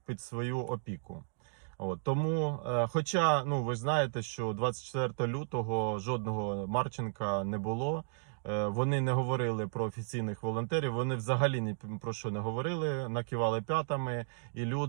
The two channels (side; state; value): left; silent; digital silence